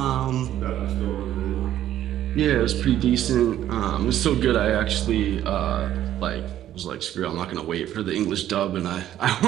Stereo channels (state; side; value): quieter; left; 11.9 dB